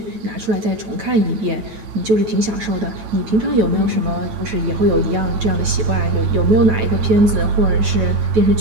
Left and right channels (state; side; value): late; left; 9.1 ms